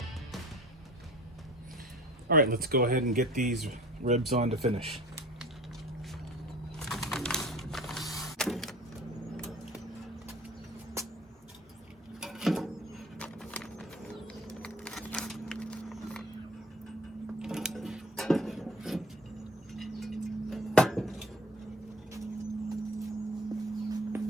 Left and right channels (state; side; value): normal; both; correlation 0.45